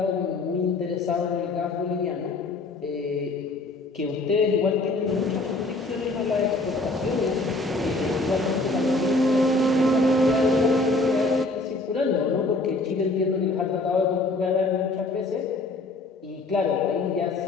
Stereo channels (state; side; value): quieter; right; 3.1 dB